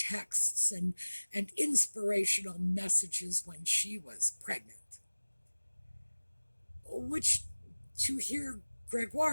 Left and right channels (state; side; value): inverted; both; correlation -1.00